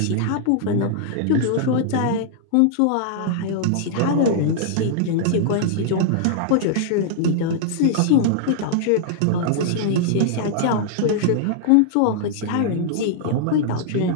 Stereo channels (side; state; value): both; different; correlation -0.01